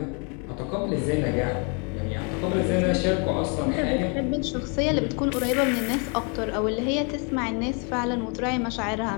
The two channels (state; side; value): quieter; right; 36.5 dB